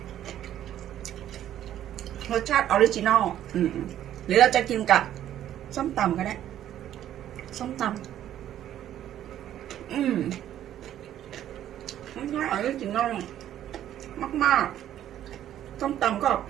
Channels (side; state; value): left; quieter; 11.5 dB